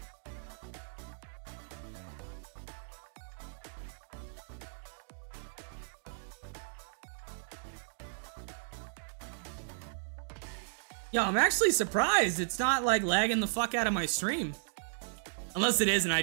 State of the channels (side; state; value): left; silent; digital silence